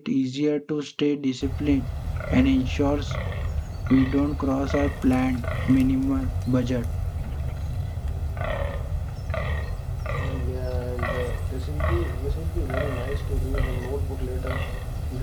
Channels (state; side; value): identical; both; correlation 1.00